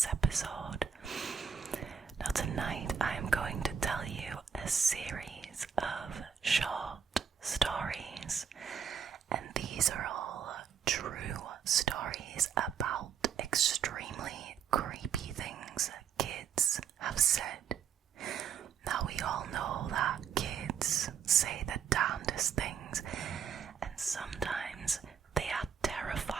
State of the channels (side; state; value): left; quieter; 7.3 dB